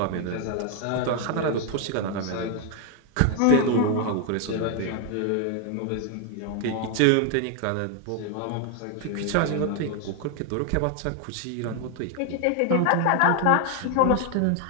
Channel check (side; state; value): both; different; correlation 0.01